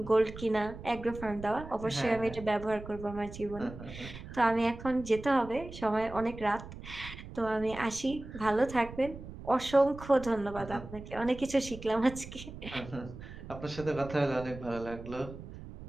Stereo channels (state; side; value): noise; right; rumble, 13 dB below the sound